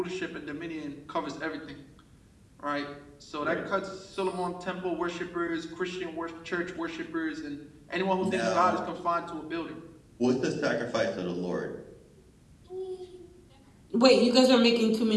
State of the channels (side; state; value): both; identical; correlation 1.00